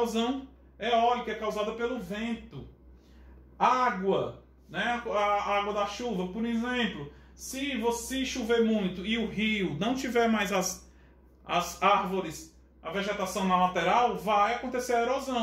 eólica, é causada pelo vento. Água, né? A água da chuva, por exemplo, se você chover muito e o rio não tiver mais as árvores, a vegetação na lateral, vai acontecer a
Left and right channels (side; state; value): both; identical; correlation 1.00